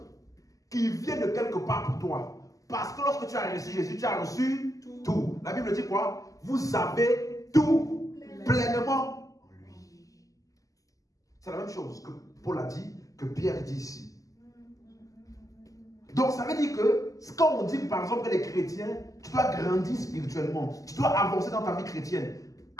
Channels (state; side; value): late; right; 0.17 ms